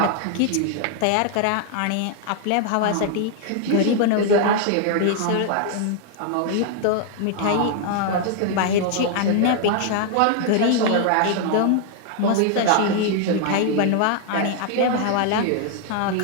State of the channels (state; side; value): different; both; correlation 0.00